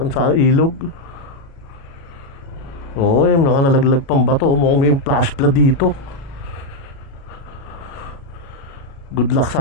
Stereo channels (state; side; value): late; right; 36 ms